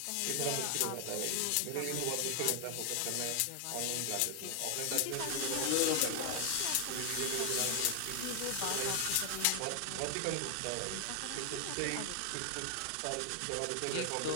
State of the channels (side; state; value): both; different; correlation 0.00